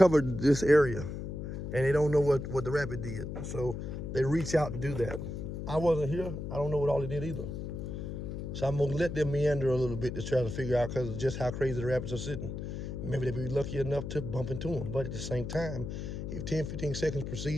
this area and they don't know what the rabbit did. So they reach out to do that. I wasn't here. I don't know what all they did either. So I'm gonna let them meander a little bit to try to figure out because of just how crazy the rabbits are sitting. Maybe they'll be lucky enough to bump into them. But at the same time, if 10, 15 seconds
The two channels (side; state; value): left; noise; hum, 6 dB below the sound